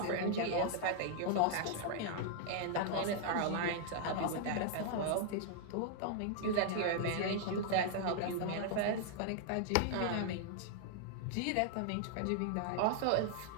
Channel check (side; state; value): both; different; correlation -0.01